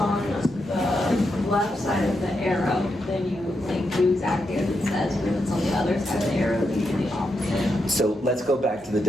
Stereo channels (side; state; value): both; normal; correlation 0.84